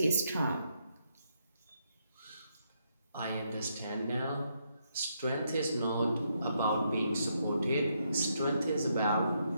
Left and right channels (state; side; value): inverted; both; correlation -0.77